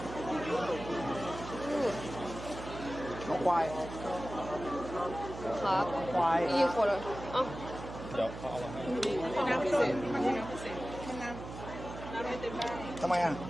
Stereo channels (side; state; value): right; noise; hum, 10 dB below the sound